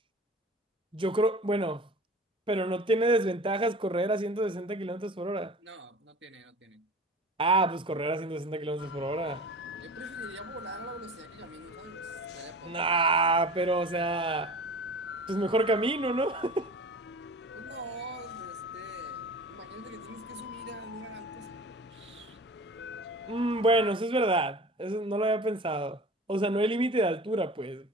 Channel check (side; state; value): both; normal; correlation 0.38